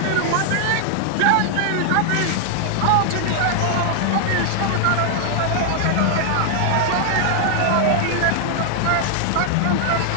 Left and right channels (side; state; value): both; different; correlation -0.01